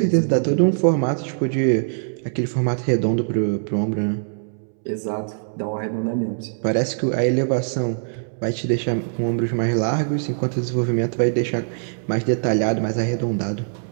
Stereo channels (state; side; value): silent; left; 64 dB below the other